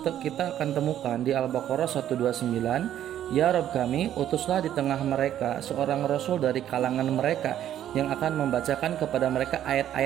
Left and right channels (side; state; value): left; quieter; 11.2 dB